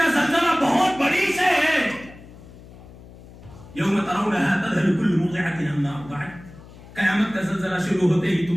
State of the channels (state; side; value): noise; left; hum, 19 dB below the sound